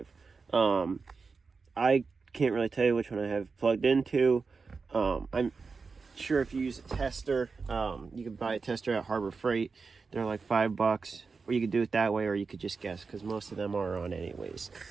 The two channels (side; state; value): left; quieter; 4.7 dB